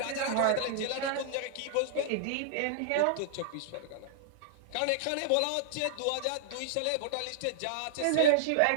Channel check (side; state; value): both; different; correlation -0.01